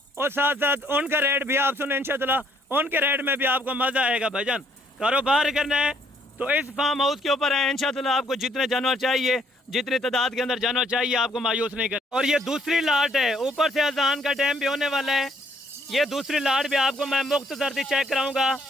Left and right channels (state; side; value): normal; both; correlation 0.67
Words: और साथ साथ उनका रेट भी आप सुने इंशाअल्लाह, उनके रेट में भी आपको मज़ा आएगा। भाईजान कारोबार करना है तो इस फार्म हाउस के ऊपर है इंशाअल्लाह, आपको जितने जानवर चाहिए, जितनी तादाद के अंदर जानवर चाहिए, आपको मायूस नहीं कर। और ये दूसरी लाट है, ऊपर से अजान का टाइम भी होने वाला है, ये दूसरी लाट भी आपको मैं मुख्तसर सी चेक कराऊंगा।